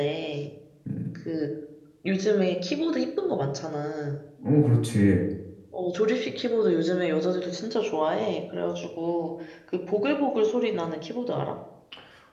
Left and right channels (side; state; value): both; identical; correlation 1.00